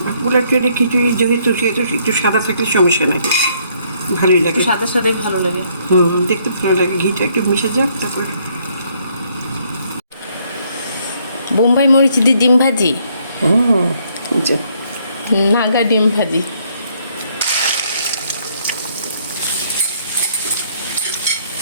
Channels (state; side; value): inverted; both; correlation -0.68